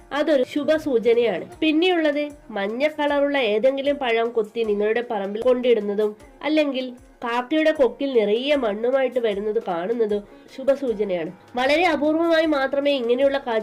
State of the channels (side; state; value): both; identical; correlation 1.00